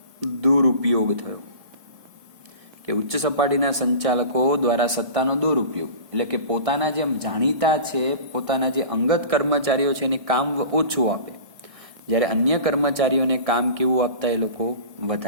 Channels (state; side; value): late; left; 1.6 ms